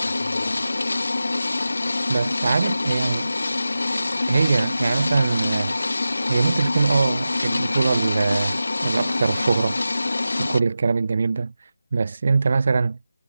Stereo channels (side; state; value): both; inverted; correlation -0.93